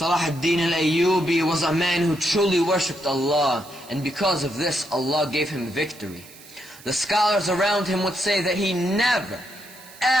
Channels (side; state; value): right; noise; hiss, 21 dB below the sound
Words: ad-Din al-Ayyubi was a man who truly worshipped Allah, and because of this, Allah gave him victory. The scholars around him would say that he never,